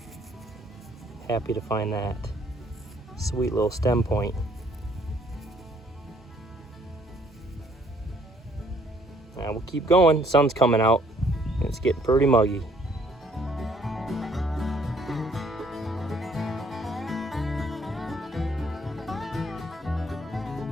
Happy to find that. Sweet little stem point. Now we'll keep going. Sun's coming out, and it's getting pretty muggy.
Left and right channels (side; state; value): both; normal; correlation 0.64